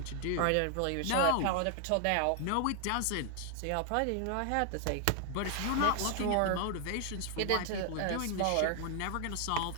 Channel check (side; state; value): both; different; correlation 0.00